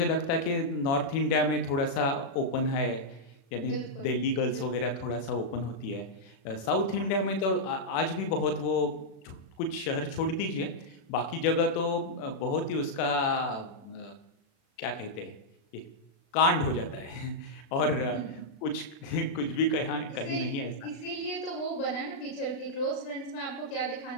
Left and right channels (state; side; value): late; right; 36 ms